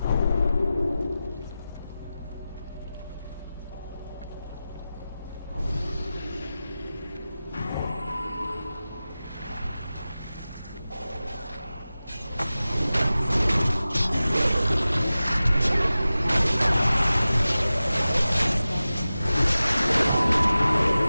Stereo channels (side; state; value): both; inverted; correlation -0.95